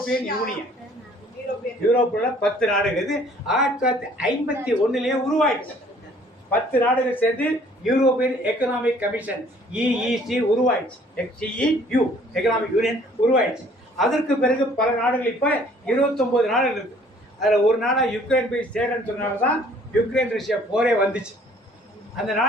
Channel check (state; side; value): normal; both; correlation 0.57